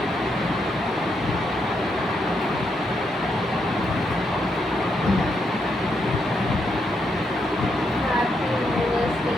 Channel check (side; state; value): both; normal; correlation 0.79